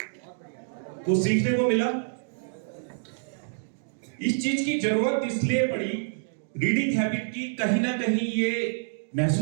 कुछ सीखने को मिला? इस चीज की जरूरत इसलिए पड़ी, रीडिंग हैबिट की कहीं ना कहीं ये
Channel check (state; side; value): silent; left; digital silence